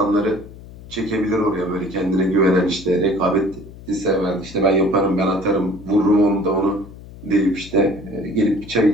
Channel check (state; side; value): noise; left; hum, 17 dB below the sound